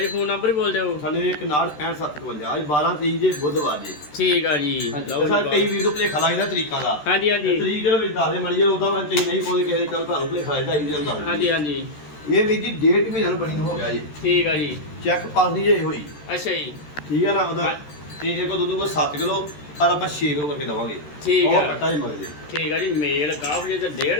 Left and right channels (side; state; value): right; late; 13 ms